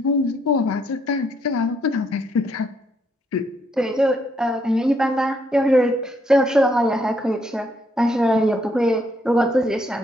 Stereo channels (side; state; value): both; normal; correlation 0.72